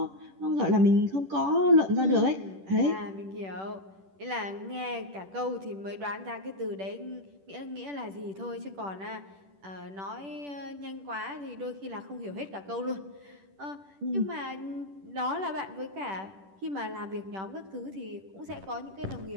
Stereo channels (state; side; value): late; left; 10 ms